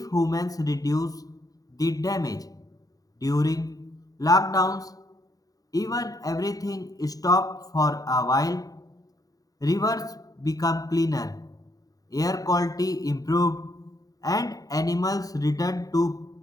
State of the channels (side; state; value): right; late; 0.18 ms